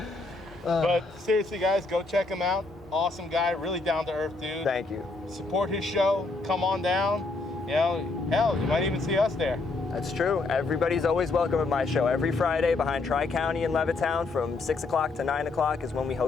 But seriously, guys, go check him out. Awesome guy, really down to earth dude. Thank you. Support his show. Come on down. You know, hell, you might even see us there. That's true. Everybody's always welcome at my show. Every Friday behind Tri-County in Levittown from 6 o'clock to 9 o'clock is when we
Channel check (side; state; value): right; quieter; 3.6 dB